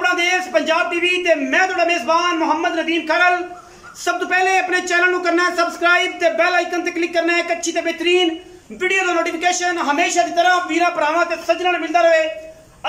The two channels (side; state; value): both; identical; correlation 1.00